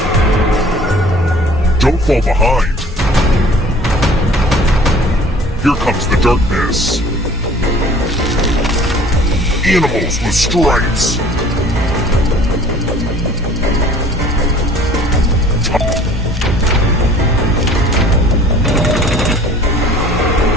Don't fall behind. Here comes the darkness. Animals with stripes.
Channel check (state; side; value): normal; both; correlation 0.50